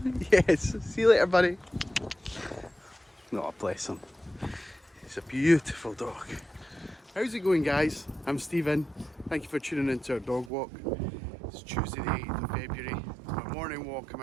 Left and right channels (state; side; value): drops out; left; at 10.5 s